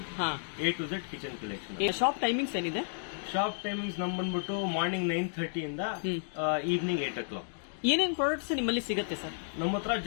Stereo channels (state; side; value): silent; right; digital silence